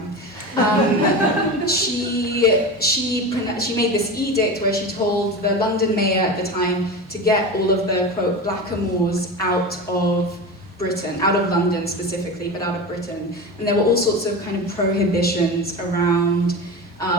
she made this edict where she told the London mayor at the time to get all of the, quote, blackamoors out of Britain, out of London specifically, but out of Britain. And there were all sorts of kind of prohibitions around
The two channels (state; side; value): normal; both; correlation 0.26